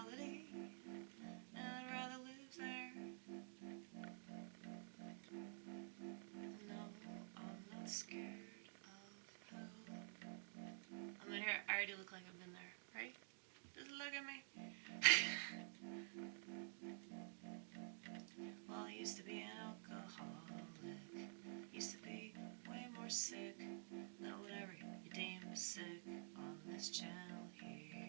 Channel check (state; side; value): silent; left; digital silence